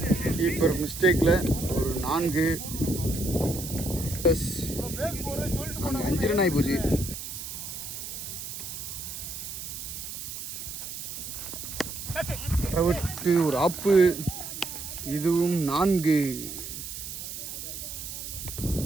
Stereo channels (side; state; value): right; noise; hiss, 8 dB below the sound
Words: கீப்பர் மிஸ்டேக்கில் ஒரு 4. 5 ரன் ஆகி போச்சு. விட்டு ஒரு ஆப்பு. இதுவும் 4